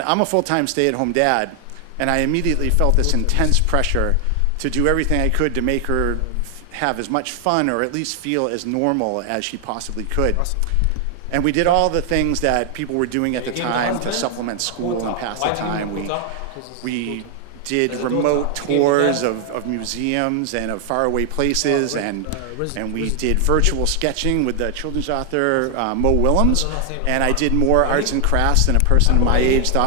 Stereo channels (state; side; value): different; both; correlation 0.00